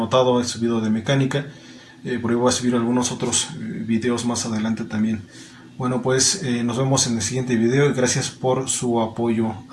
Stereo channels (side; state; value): both; identical; correlation 1.00